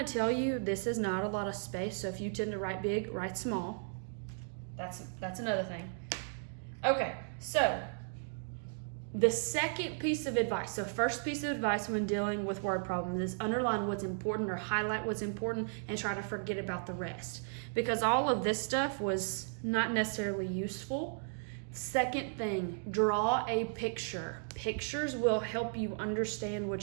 tell you this is not a lot of space, so if you tend to write big, write small. That's another thing. Okay, so the second piece of advice, so first piece of advice when dealing with word problems is underline what's important or highlight what's important and try to forget about the rest. Because all of this stuff was not necessarily useful. Second thing, draw a picture. Pictures will help you understand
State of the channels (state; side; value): silent; left; digital silence